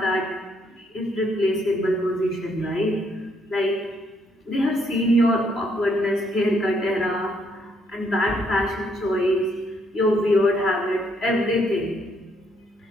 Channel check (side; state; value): both; normal; correlation 0.72